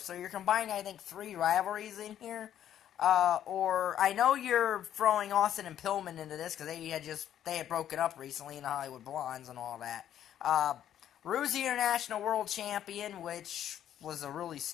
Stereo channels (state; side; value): quieter; right; 10.7 dB